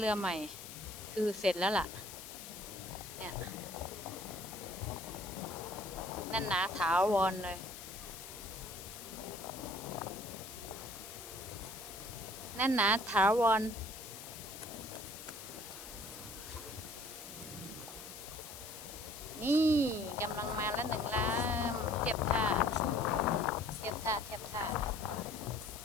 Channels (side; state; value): left; noise; hiss, 12 dB below the sound